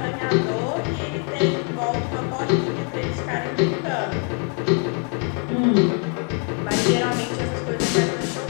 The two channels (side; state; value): right; quieter; 39.3 dB